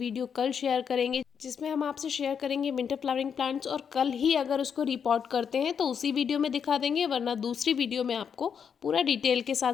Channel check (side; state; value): right; quieter; 7.2 dB